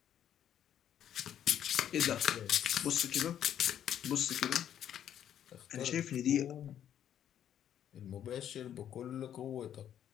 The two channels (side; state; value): right; quieter; 10.1 dB